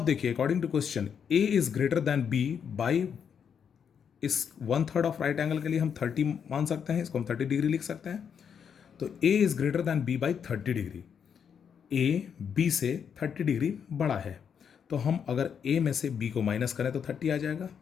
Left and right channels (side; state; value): right; quieter; 7.4 dB